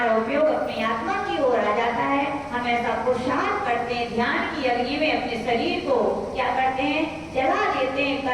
उपयोग अपनी आत्मा की ओर आ जाता है, हम ऐसा पुरुषार्थ करते हैं, ध्यान की अग्नि में अपने शरीर को क्या करते हैं, जला देते हैं,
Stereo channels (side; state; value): both; identical; correlation 1.00